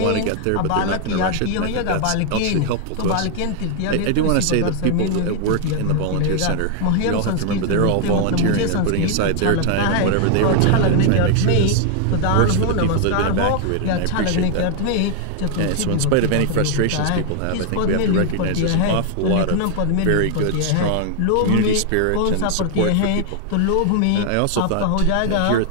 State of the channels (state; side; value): different; both; correlation 0.00